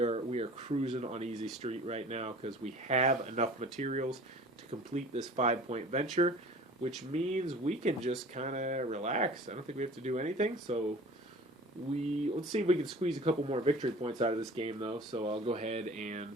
cruising on easy street right now because we have enough materials to complete this 5-point venture, which means we can just kind of relax. I don't think we have to do anything. So let's see if we can squeeze a couple more victory points out of this game, though. So I'll go ahead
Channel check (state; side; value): normal; both; correlation 0.44